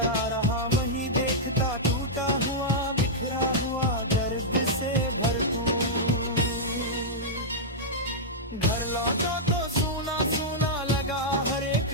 रहा वहीं देखता टूटा हुआ बिखरा हुआ दर्द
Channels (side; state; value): both; normal; correlation -0.09